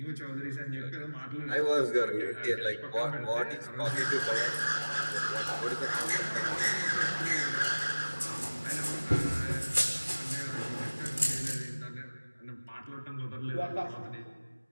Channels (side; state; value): both; inverted; correlation -1.00